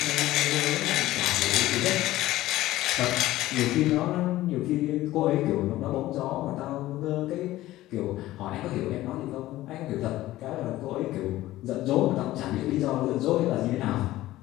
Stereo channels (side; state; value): right; quieter; 16.0 dB